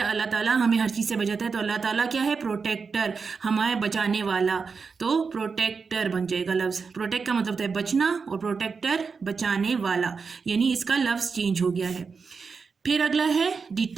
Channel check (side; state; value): left; quieter; 5.2 dB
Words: ताला हमें हर चीज़ से बचाता है, तो अल्लाह ताला क्या है? प्रोटेक्टर, हमारे बचाने वाला, तो प्रोटेक्टर बन जाएगा लफ्ज़। प्रोटेक्ट का मतलब होता है बचना और प्रोटेक्टर बचाने वाला, यानी इसका लफ्ज़ चेंज हो गया है। फिर अगला है